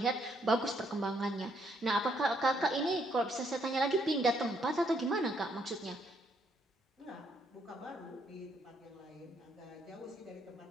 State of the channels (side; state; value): both; normal; correlation 0.72